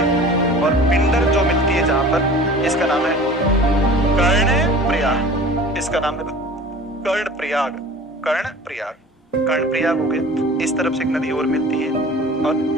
और पिंडर जो मिलती है जहाँ पर, इसका नाम है कर्ण प्रयाग। इसका नाम है कर्ण प्रयाग, कर्ण प्रयाग, कर्ण प्रयाग हो गया। इस तरफ से एक नदी और मिलती है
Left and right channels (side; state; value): both; normal; correlation 0.43